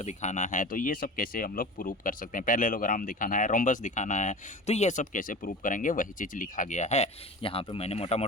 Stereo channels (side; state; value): both; normal; correlation 0.34